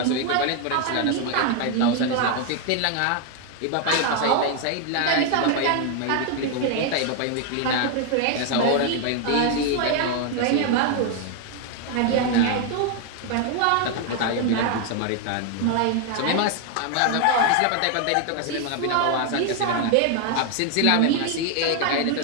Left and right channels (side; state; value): both; different; correlation 0.01